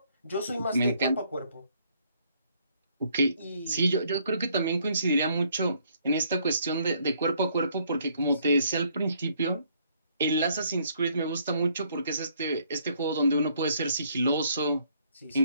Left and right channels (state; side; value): inverted; both; correlation -0.66